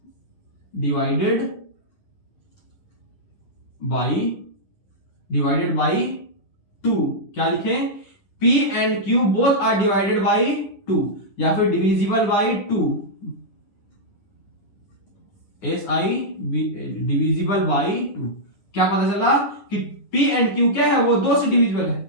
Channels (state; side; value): late; right; 10 ms